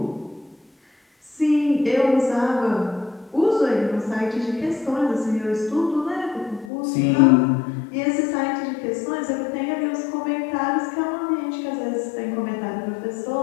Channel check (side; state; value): right; drops out; at 6.7 s